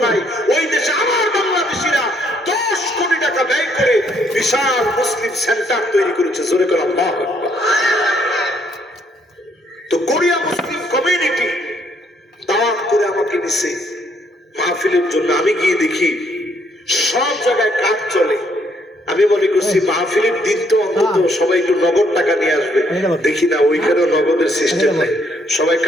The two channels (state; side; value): normal; both; correlation 0.69